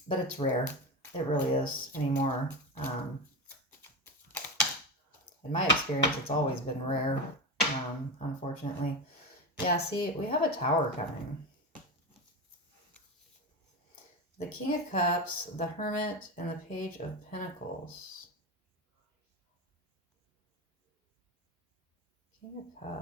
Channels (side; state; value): both; normal; correlation 0.20